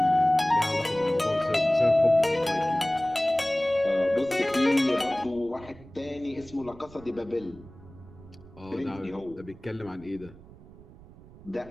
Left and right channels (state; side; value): noise; right; rumble, 21 dB below the sound